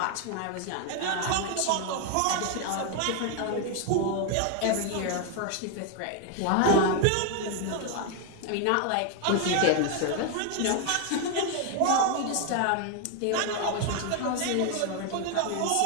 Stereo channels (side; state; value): both; different; correlation 0.01